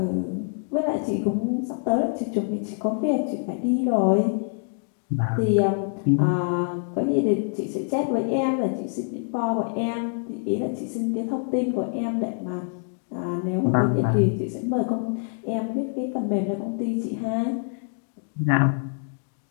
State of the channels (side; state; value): right; silent; 57 dB below the other